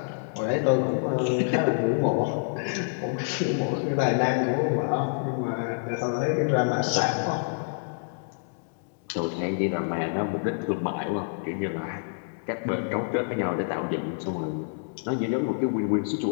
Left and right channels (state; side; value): silent; right; digital silence